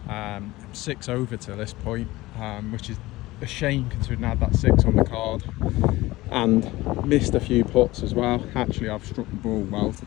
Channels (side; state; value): right; quieter; 18.8 dB